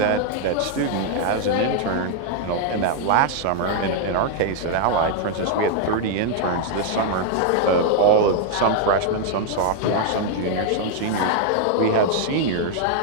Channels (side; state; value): both; different; correlation 0.00